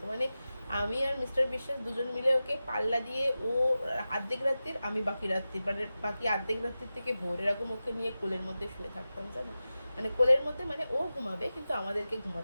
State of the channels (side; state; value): both; inverted; correlation -0.94